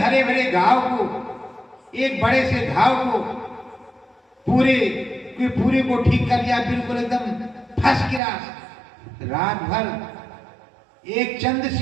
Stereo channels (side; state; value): left; drops out; at 8.2 s